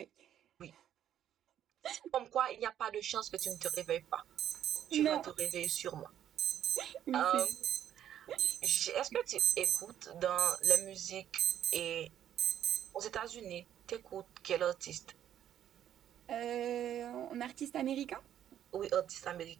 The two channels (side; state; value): left; quieter; 10.6 dB